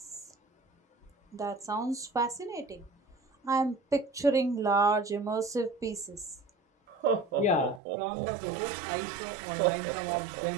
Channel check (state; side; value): drops out; left; at 7.8 s